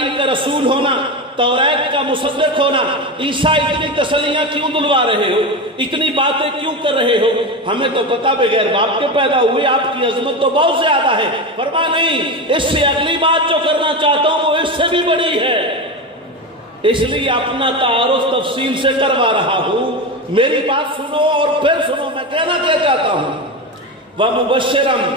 کا رسول ہونا، تورات کا مصدق ہونا. عیسیٰ اتنی تسلیاں کیوں دلوا رہے ہو، اتنی باتیں کیوں کر رہے ہو؟ ہمیں تو پتا بغیر باپ کے پیدا ہوئے، آپ کی عظمت تو بہت زیادہ ہے. فرما نہیں، اس سے اگلی بات جو کرنا چاہتا ہوں وہ اس سے بھی بڑی ہے، اس لیے اپنا تعارف تفصیل سے کروا رہا ہوں. میری بات سنو اور پھر سنو. میں کہنا کیا چاہتا ہوں،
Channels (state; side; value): normal; both; correlation 0.20